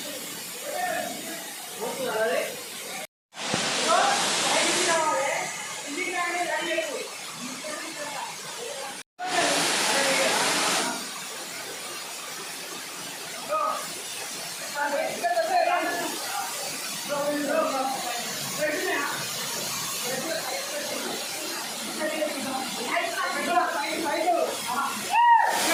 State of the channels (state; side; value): identical; both; correlation 1.00